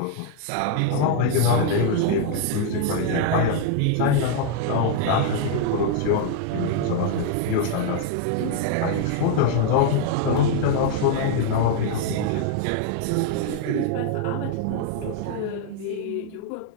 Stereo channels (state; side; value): different; both; correlation 0.00